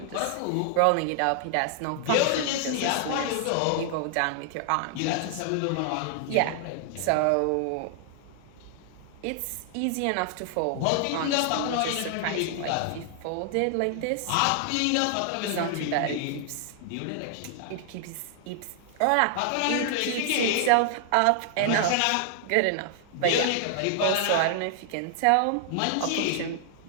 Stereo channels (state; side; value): different; both; correlation 0.00